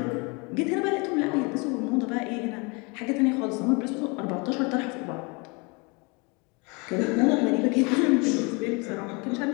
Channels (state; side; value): quieter; right; 29.7 dB